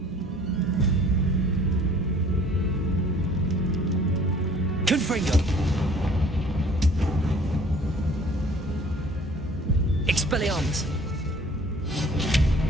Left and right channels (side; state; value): both; normal; correlation 0.53